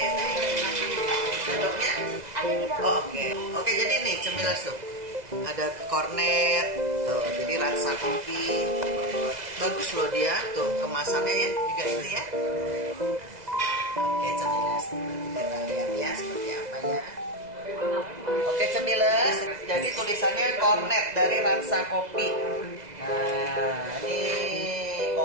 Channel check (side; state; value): left; late; 2.0 ms